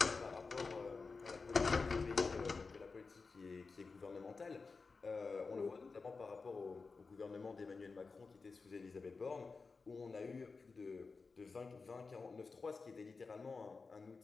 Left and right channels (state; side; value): quieter; right; 4.4 dB